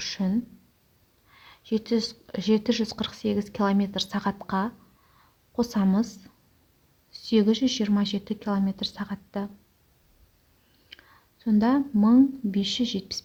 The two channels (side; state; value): both; identical; correlation 1.00